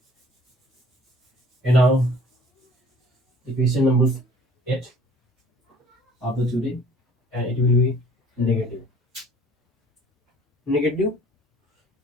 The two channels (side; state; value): both; normal; correlation 0.53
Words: And now the question number 8 of the today, and it will be negative. Negative